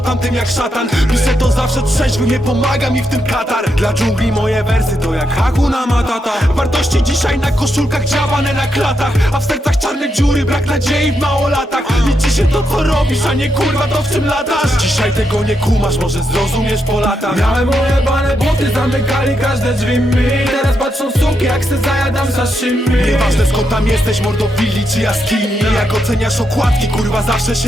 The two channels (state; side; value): normal; both; correlation 0.82